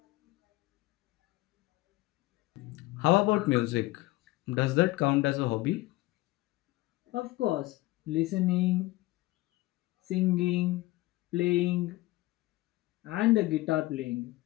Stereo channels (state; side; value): quieter; right; 19.2 dB